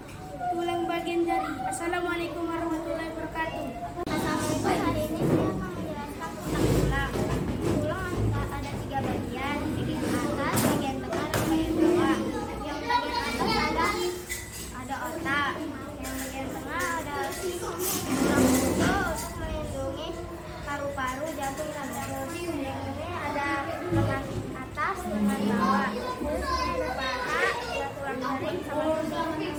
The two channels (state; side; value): identical; both; correlation 1.00